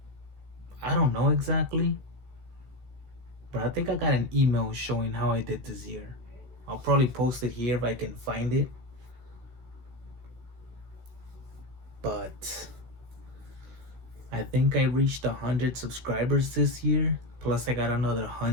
I don't know exactly, but I think I got an email showing how I did this year. I'll probably post it here if I can find it. But I think I reached 100 subscribers this year, plus I got another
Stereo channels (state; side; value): late; left; 16 ms